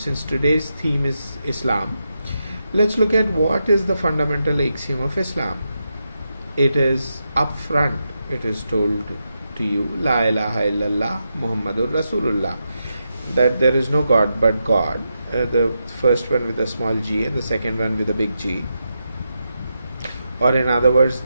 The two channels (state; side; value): inverted; both; correlation -0.86